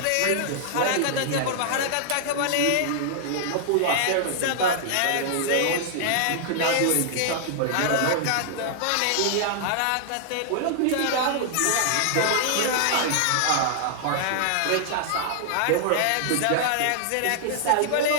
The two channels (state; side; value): different; both; correlation -0.01